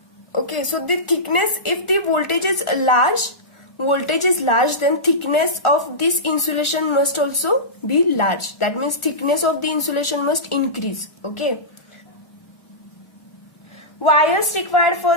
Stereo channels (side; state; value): right; late; 1.4 ms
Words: Okay, so the thickness, if the voltage is large, then thickness of this insulation must also be large. That means thickness of the insulation must increase. Okay. Wires required